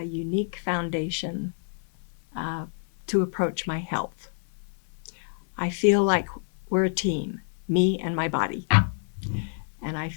unique foundation to approach my health. I feel like we're a team, me and my body. And I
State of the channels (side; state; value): right; silent; 60 dB below the other